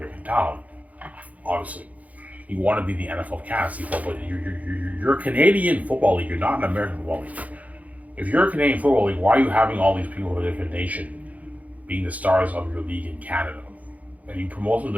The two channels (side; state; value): left; late; 0.072 ms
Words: talent, obviously. You want to be the NFL of Canada, but you're a Canadian football league. You're not an American football league. If you're a Canadian football league, why are you having all these people from a different nation being the stars of your league in Canada? And you promote them to